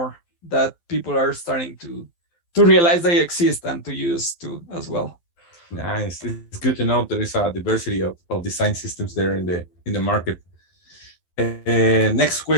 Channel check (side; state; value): right; late; 12 ms